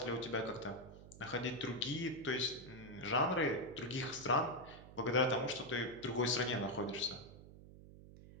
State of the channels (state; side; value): noise; right; hum, 17 dB below the sound